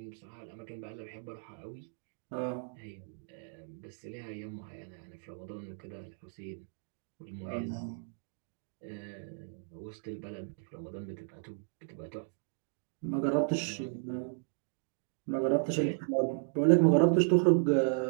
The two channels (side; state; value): left; silent; digital silence